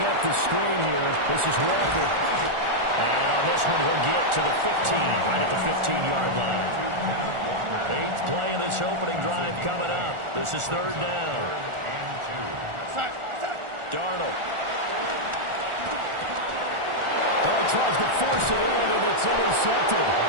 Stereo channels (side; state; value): left; late; 1.4 ms